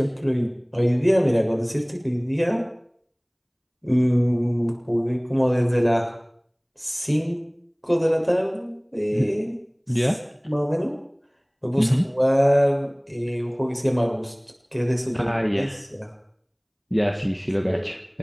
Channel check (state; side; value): identical; both; correlation 1.00